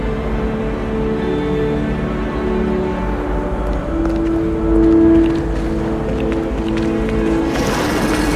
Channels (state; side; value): identical; both; correlation 1.00